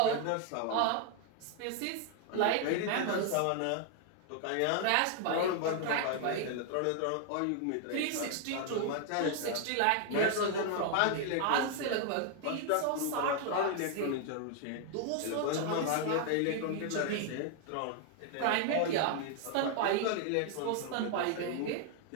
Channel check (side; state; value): both; different; correlation 0.00